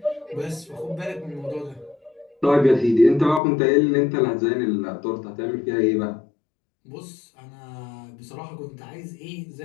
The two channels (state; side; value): drops out; right; at 3.4 s